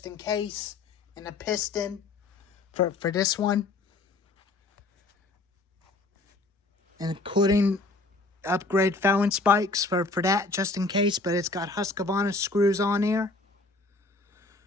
in case, and a piston for this one. And including upgrade Fallon spikes for that just in case, but it's got Husqvarna screws on here.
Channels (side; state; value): right; quieter; 3.3 dB